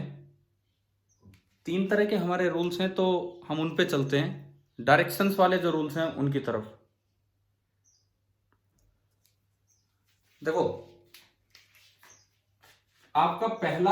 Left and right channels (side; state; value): both; identical; correlation 1.00